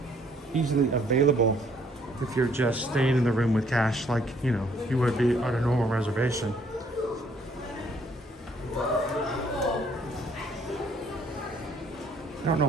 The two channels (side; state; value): both; normal; correlation 0.64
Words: easily available if you're just staying in the room with cash, like you would be on a normal reservation. I don't know